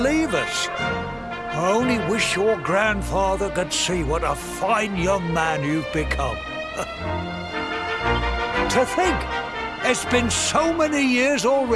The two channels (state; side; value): identical; both; correlation 1.00